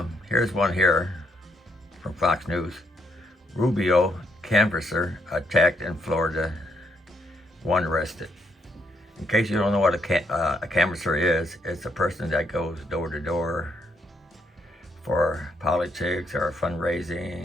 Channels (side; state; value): both; normal; correlation 0.75